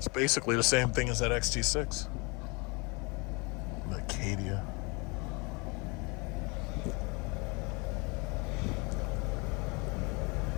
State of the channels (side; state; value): right; quieter; 28.8 dB